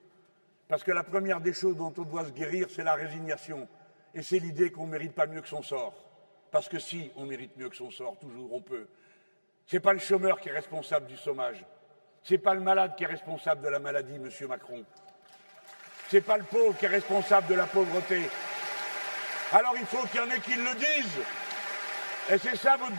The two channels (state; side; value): inverted; both; correlation -1.00